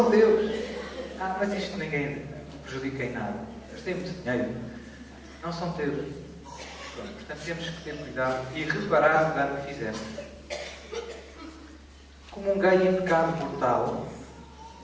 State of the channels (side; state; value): both; identical; correlation 1.00